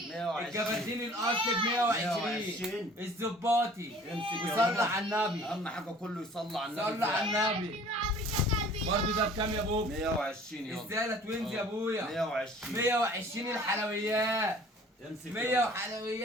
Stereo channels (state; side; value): normal; both; correlation 0.50